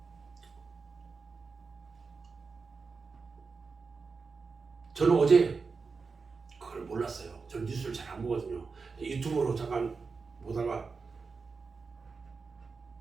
저는 어제 그걸 몰랐어요. 저는 뉴스를 잘 안 보거든요. 유튜브로 잠깐 보다가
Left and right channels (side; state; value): left; quieter; 4.7 dB